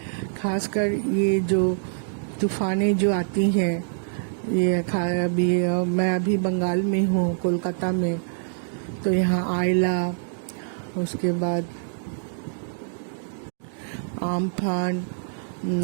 खासकर ये जो तूफानें जो आती हैं, ये मैं अभी बंगाल में हूँ, कोलकाता में, तो यहाँ आयला, उसके बाद आम्फान,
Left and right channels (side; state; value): left; silent; digital silence